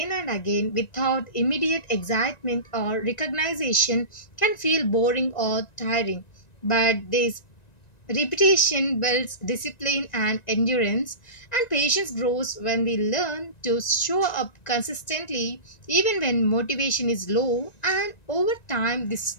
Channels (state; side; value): late; right; 1.9 ms